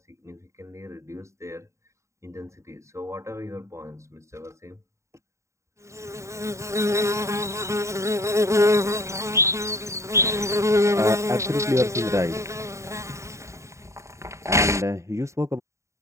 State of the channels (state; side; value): late; left; 0.14 ms